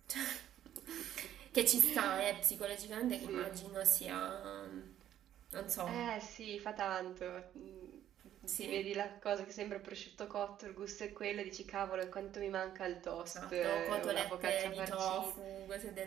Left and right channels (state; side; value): quieter; left; 11.3 dB